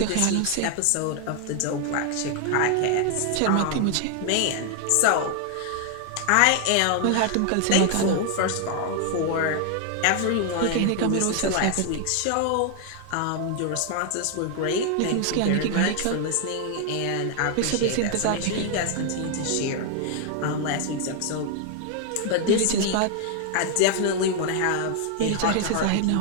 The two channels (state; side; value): different; both; correlation 0.00